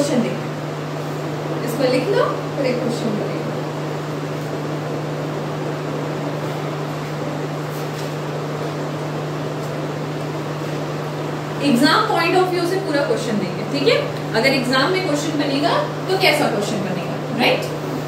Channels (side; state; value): both; identical; correlation 1.00